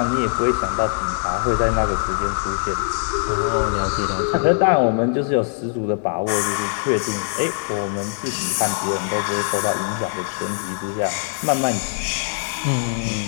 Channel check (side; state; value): right; silent; digital silence